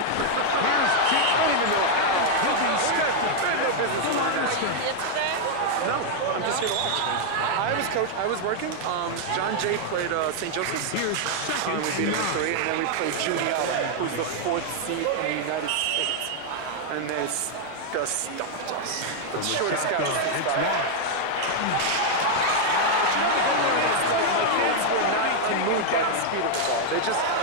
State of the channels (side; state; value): both; different; correlation 0.00